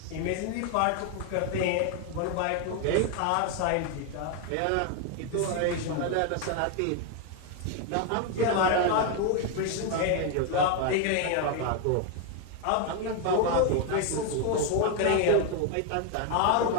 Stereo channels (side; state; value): both; different; correlation 0.01